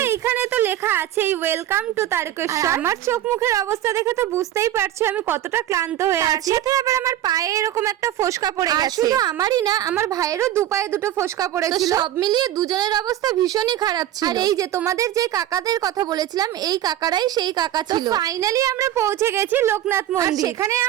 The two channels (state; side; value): quieter; left; 12.4 dB